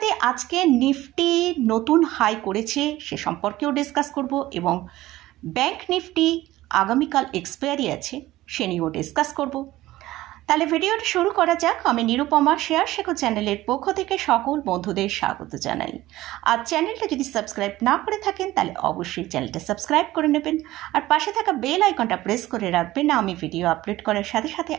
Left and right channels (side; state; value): left; quieter; 16.4 dB